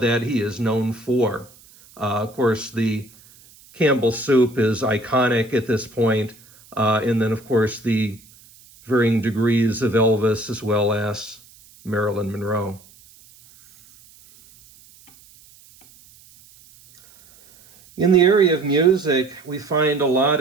he is known for. Of course, the Campbell soup is iconic at this point. And then, of course, the varying degrees of Elvis as well as Marilyn Monroe. In the area of music, we find a lot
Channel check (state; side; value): noise; right; hiss, 26 dB below the sound